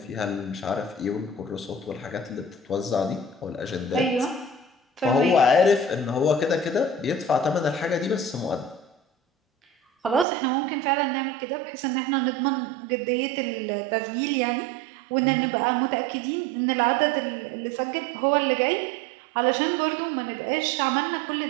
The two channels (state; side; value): drops out; left; at 10.2 s